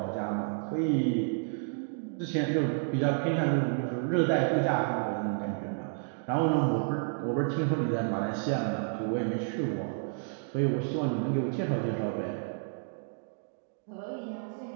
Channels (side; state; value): left; silent; 57 dB below the other